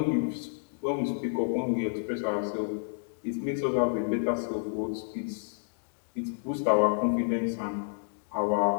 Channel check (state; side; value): silent; right; digital silence